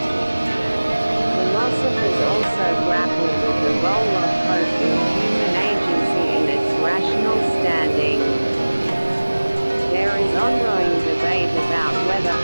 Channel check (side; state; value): both; inverted; correlation -1.00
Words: Philosophers also grapple with the role of hope in human agency and its rational standing. There is ongoing debate about whether